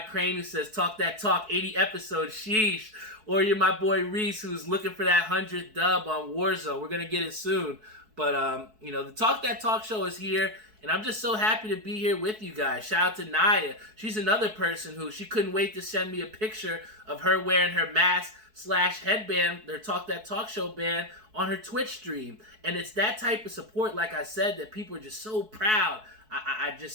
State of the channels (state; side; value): late; left; 4.6 ms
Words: Crane, who says Talk That Talk, 80 episodes, sheesh, or you're my boy Reese, who's looking for that 100th dub on Warzone. We're gonna get it soon. But the Talk That Talk Show is here, and I'm just so happy to be here with you guys. Shout out to Naya. She's another person who, she couldn't wait to send me a picture of her wearing her mask / headband, their Talk That Talk Show band, on her Twitch stream. And it's that type of support, like I said, that people are just so proud. I